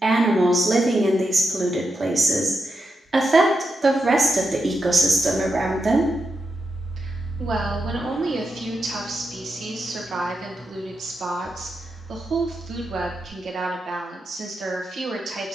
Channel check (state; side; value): normal; both; correlation 0.86